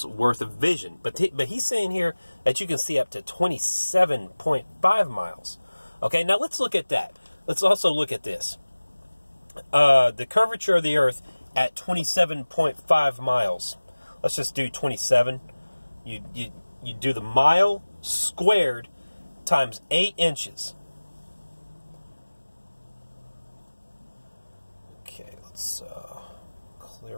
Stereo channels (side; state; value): both; inverted; correlation -1.00